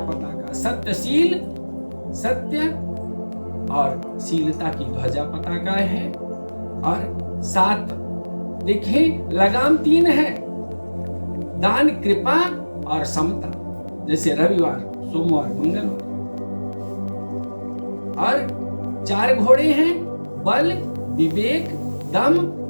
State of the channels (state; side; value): inverted; both; correlation -1.00